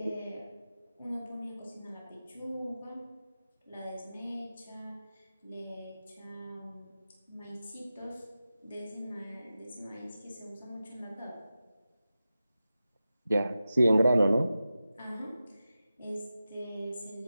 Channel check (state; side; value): inverted; both; correlation -0.93